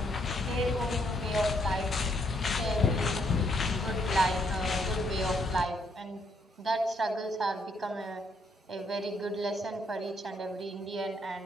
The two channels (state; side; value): normal; both; correlation 0.72